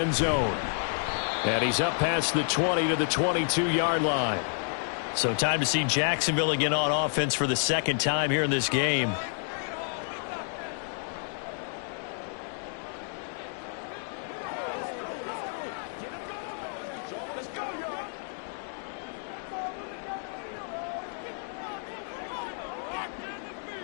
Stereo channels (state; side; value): silent; right; 58 dB below the other